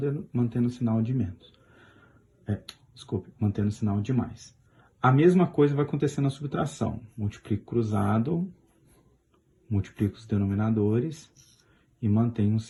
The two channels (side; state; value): both; identical; correlation 1.00